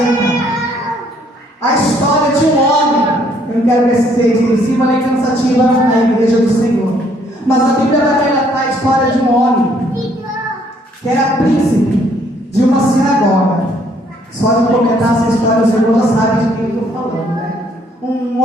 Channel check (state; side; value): normal; both; correlation 0.66